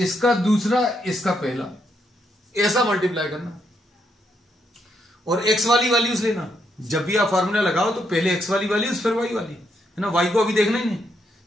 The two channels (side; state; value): both; normal; correlation 0.77